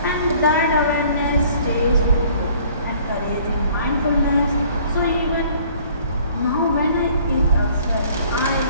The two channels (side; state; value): both; inverted; correlation -0.56